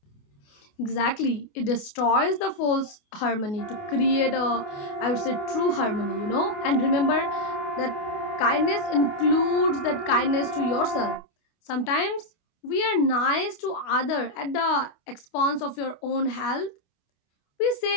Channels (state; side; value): late; right; 28 ms